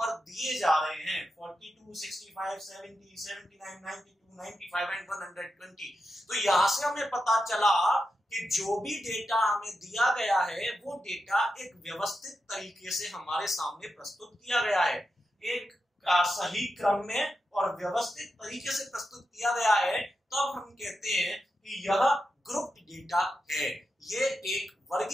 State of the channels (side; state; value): both; normal; correlation 0.88